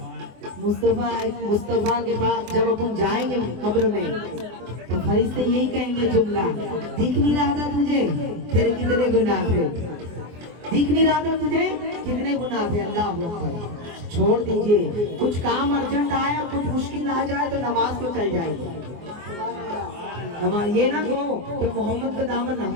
मुस्तफा के पास जब अपन जाएंगे कब्र में तो फरिश्ते यही कहेंगे जुमला, दिख नहीं रहा था तुझे तेरे कितने गुनाह थे, दिख नहीं रहा था तुझे कितने गुनाह थे। अल्लाह अकबर। छोड़ दीजिए, कुछ काम अर्जेंट आया, कुछ मुश्किल आ जाए तो नमाज को चल जाएगी। नमाज ये ना कहो कि मोहम्मद का दामन,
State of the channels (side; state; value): left; late; 24 ms